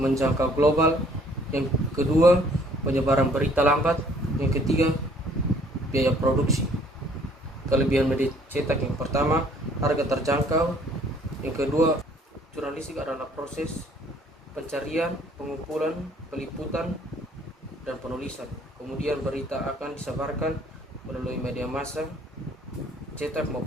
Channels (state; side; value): normal; both; correlation 0.59